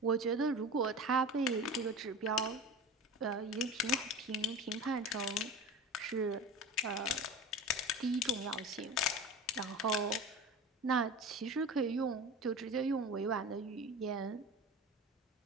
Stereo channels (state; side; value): normal; both; correlation 0.32